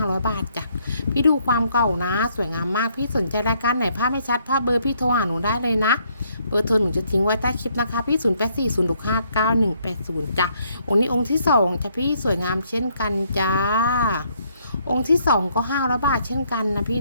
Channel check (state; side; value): inverted; both; correlation -0.70